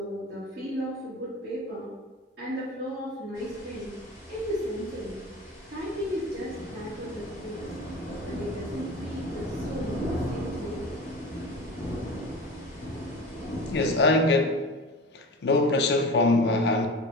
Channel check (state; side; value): normal; both; correlation 0.34